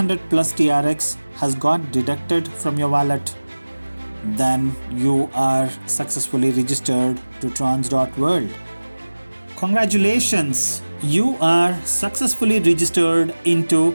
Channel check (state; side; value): inverted; both; correlation -1.00